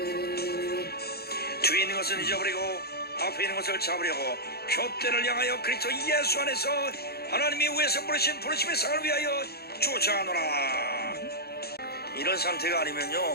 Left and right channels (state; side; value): late; right; 0.46 ms